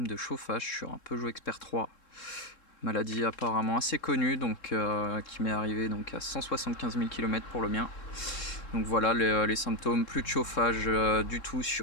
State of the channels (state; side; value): late; right; 3.7 ms